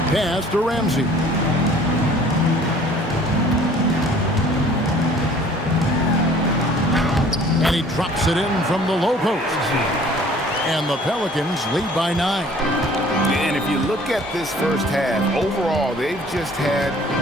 Pass to Ramsey. And he drops it in from the low post. And the Pelicans lead by 9. And if you look at this first half, overall, they've just had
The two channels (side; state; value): both; normal; correlation 0.52